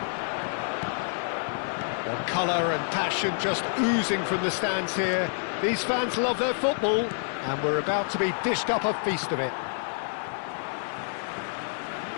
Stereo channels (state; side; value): silent; right; digital silence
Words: Well, colour and passion just oozing from the stands here. These fans love their football, and we're about to be dished up a feast of it.